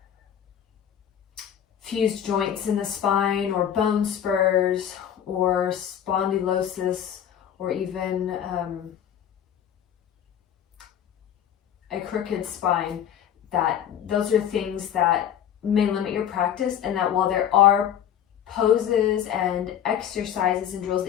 fused joints in the spine or bone spurs or spondylosis, or even a crooked spine, that those are things that may limit your practice, and that while there are poses and exercises and drills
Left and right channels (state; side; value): quieter; right; 9.6 dB